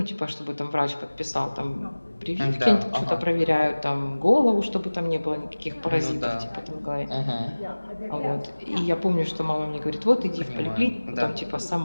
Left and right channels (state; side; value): inverted; both; correlation -1.00